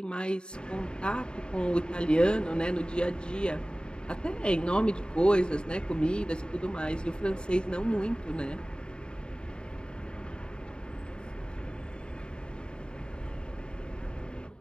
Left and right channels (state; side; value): late; right; 0.050 ms